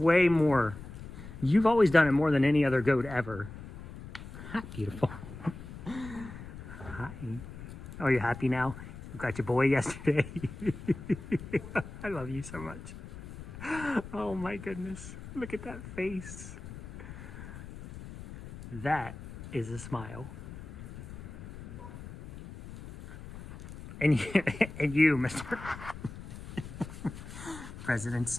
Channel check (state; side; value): noise; left; rumble, 13 dB below the sound